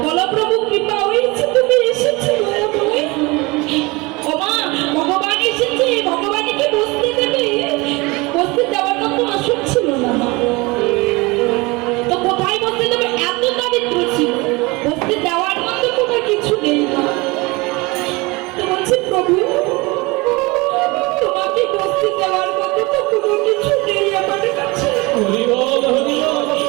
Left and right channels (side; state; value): left; quieter; 24.5 dB